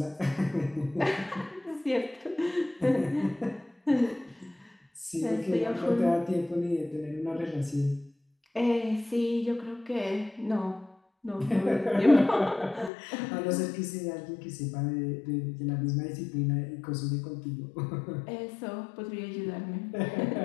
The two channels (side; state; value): right; drops out; at 12.9 s